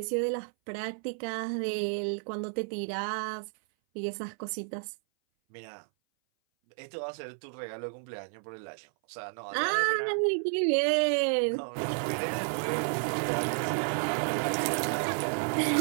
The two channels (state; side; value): silent; left; 57 dB below the other